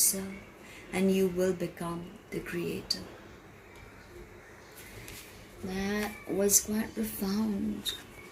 and you will become the creator. That was quite profound.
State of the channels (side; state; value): both; identical; correlation 1.00